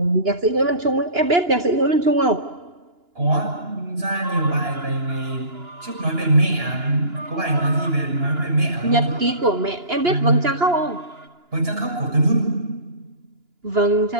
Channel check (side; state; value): left; late; 2.9 ms